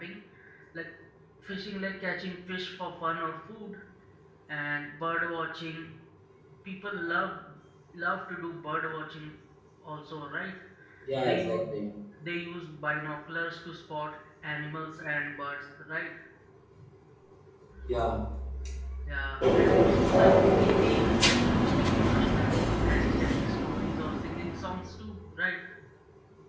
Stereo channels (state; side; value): identical; both; correlation 1.00